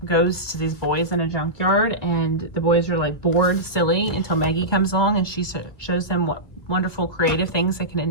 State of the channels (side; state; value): right; late; 1.9 ms